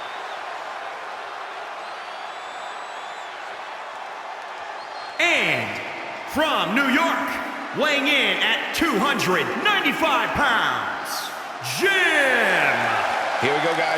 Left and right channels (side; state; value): both; identical; correlation 1.00